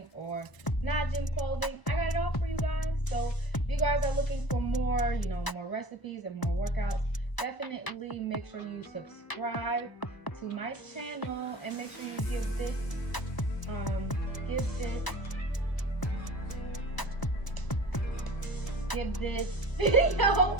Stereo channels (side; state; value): right; late; 1.0 ms